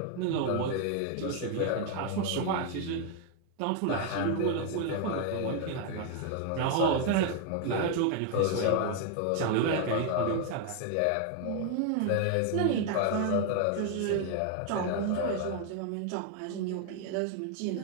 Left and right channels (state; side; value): different; both; correlation 0.00